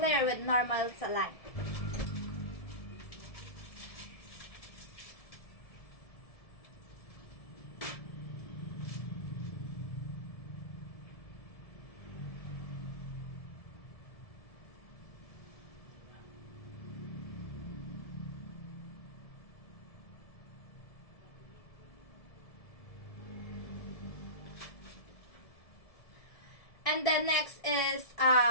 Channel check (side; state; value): right; late; 1.7 ms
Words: with normal saline. And then next is